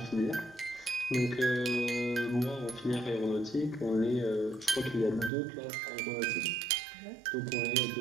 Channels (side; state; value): left; drops out; at 5.3 s